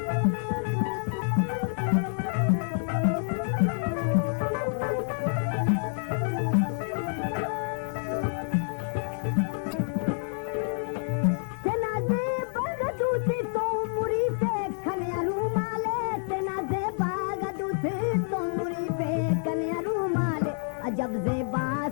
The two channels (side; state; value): right; silent; digital silence